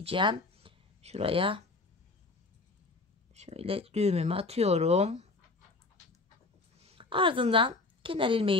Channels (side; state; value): right; quieter; 3.5 dB